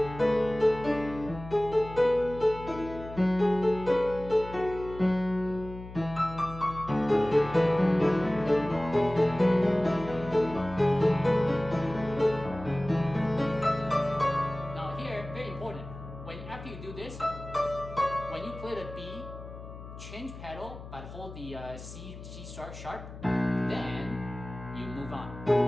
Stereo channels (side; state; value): left; noise; hum, 13 dB below the sound